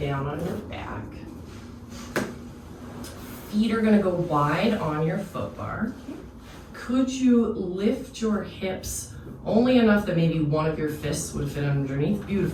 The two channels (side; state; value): both; identical; correlation 1.00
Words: on your back. Feet are gonna go wide on your foot bar. Could you lift your hips only enough that maybe one of your fists would fit underneath?